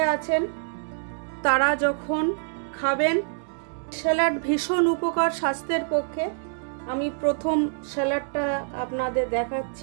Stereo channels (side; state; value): left; silent; digital silence